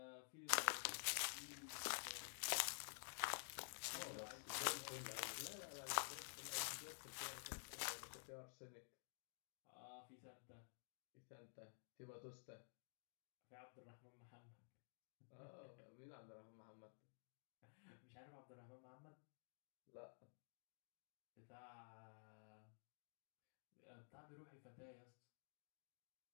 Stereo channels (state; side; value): silent; right; digital silence